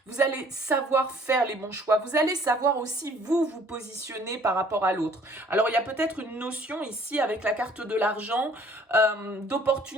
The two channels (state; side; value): normal; both; correlation 0.57